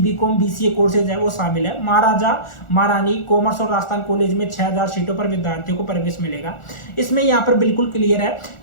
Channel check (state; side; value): late; right; 1.4 ms